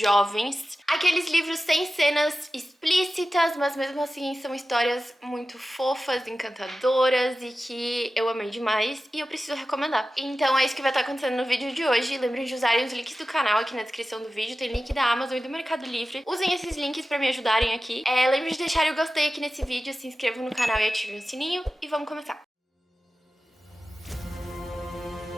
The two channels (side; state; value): both; normal; correlation 0.95